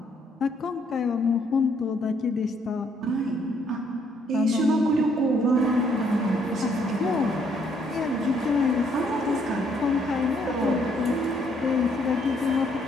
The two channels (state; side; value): normal; both; correlation 0.68